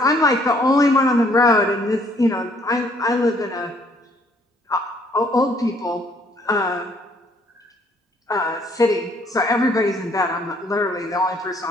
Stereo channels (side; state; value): both; normal; correlation 0.64